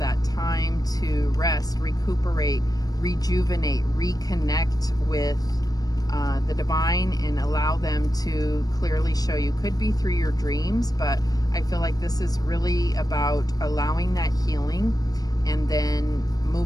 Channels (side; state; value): right; late; 0.18 ms